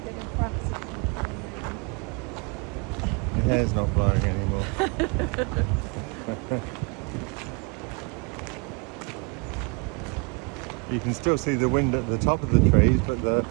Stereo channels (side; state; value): left; quieter; 32.2 dB